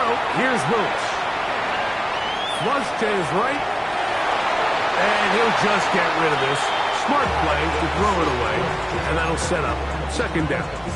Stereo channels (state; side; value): identical; both; correlation 1.00